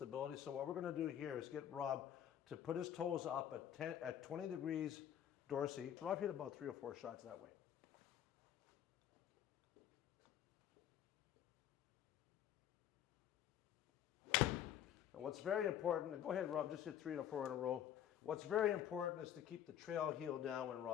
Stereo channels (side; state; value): right; quieter; 10.3 dB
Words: So what we're going to do here is get Rob to put his toes up at 20 degrees dorsal. Rob hit about 3 or 4 shots that way. Now what's very important, go ahead Rob, just hit 3 or 4 in a row. What's very important is to keep the trail heel down when